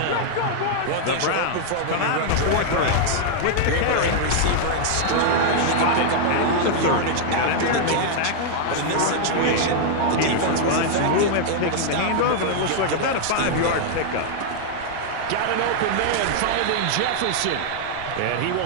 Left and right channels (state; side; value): different; both; correlation -0.01